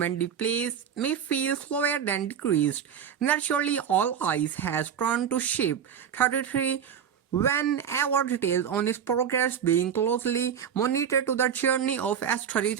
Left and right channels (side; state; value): left; quieter; 8.3 dB